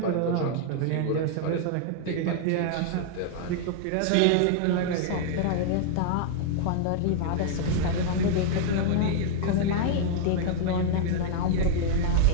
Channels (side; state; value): both; different; correlation -0.01